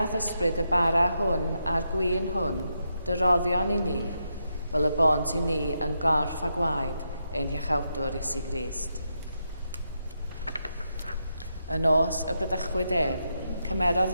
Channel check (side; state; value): both; inverted; correlation -0.83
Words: thysbryd y bara hwn a'r gwyn hwn, dy roddion i ni, fel y bont i ni yn gorff a gwaed ein hiachawdwr Iesu Grist. Y nos y brydychwyd ef, cymerodd